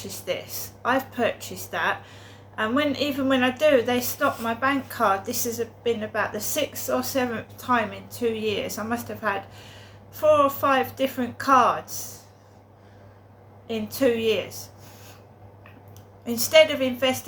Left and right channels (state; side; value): identical; both; correlation 1.00